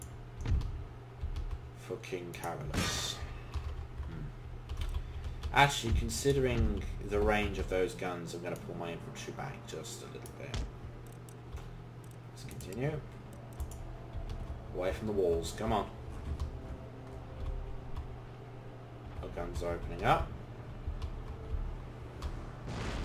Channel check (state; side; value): identical; both; correlation 1.00